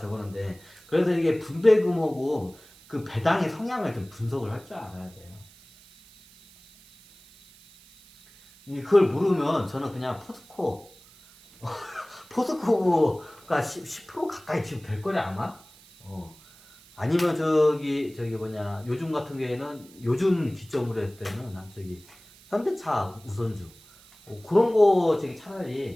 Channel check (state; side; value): noise; right; hiss, 25 dB below the sound